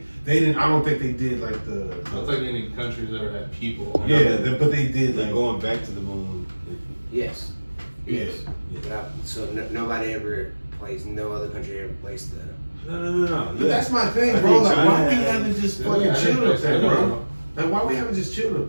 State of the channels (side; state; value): both; inverted; correlation -1.00